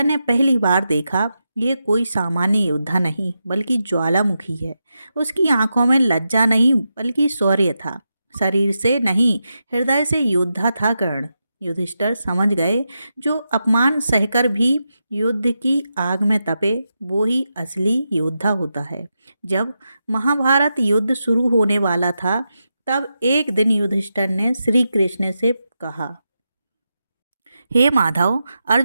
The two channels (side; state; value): both; inverted; correlation -0.88